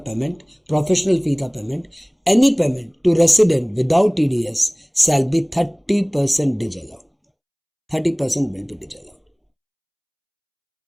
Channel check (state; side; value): identical; both; correlation 1.00